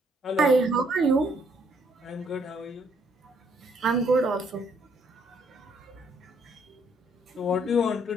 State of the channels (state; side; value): normal; both; correlation 0.68